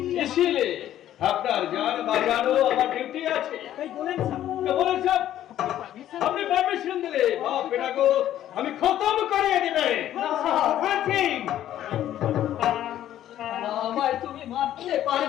इसीलिए আপনার যান বাজানো আমার ডিউটি আছে। বলেন সাহেব, আপনি পারমিশন দিলে বাপ বেটাকে আমি খতম করে দিবে। আমায় তুমি মারতে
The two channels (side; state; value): right; quieter; 12.1 dB